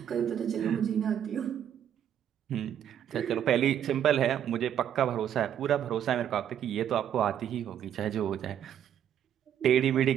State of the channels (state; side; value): quieter; left; 9.8 dB